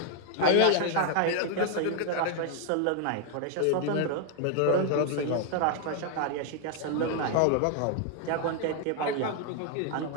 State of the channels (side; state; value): both; different; correlation 0.00